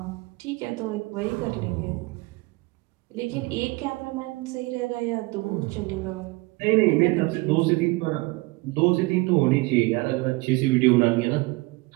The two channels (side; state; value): left; quieter; 23.7 dB